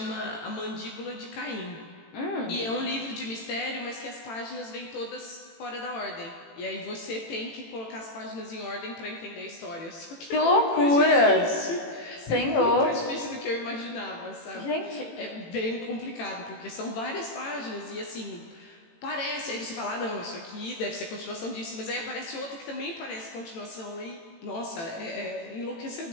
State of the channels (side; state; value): right; late; 18 ms